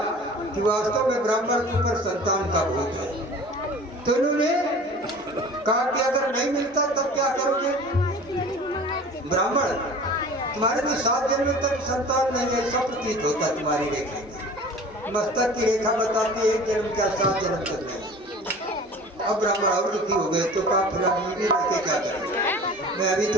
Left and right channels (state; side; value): normal; both; correlation 0.42